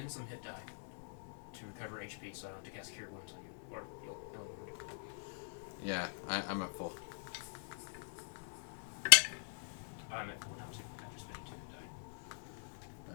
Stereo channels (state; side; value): silent; right; digital silence